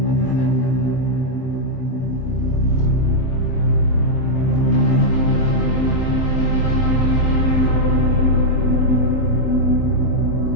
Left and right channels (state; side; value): late; right; 23 ms